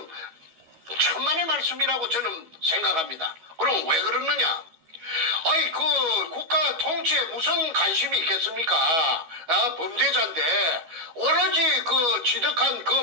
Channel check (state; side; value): late; left; 12 ms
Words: 말씀이라고 저는 생각합니다. 그럼 왜 그러느냐? 아이 그 국가 통치에 무슨 관심이 있겠습니까? 범죄자인데 오로지 그 취득한